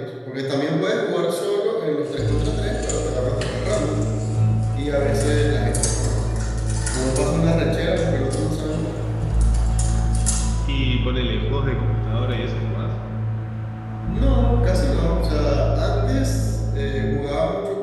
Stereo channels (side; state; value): both; identical; correlation 1.00